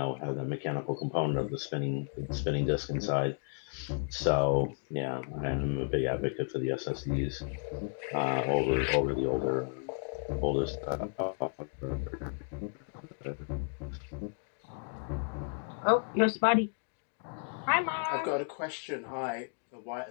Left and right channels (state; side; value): silent; right; 56 dB below the other